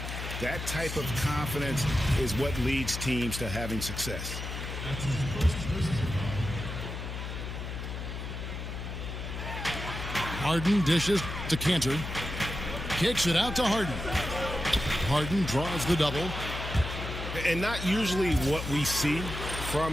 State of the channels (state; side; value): noise; left; hum, 6 dB below the sound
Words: That type of confidence is what leads teams to having success. Harden dishes to Cantor. Kicks it out to Harden. Harden draws the double. And not usually what we see